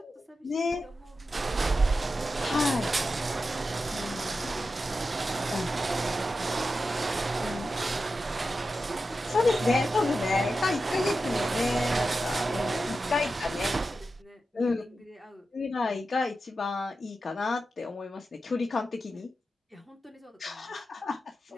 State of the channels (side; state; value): both; normal; correlation 0.91